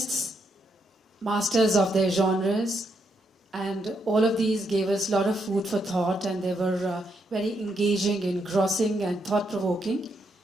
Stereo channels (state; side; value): normal; both; correlation 0.78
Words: masters of their genres, and all of these gave us a lot of food for thought, and they were very engaging, engrossing, and thought-provoking.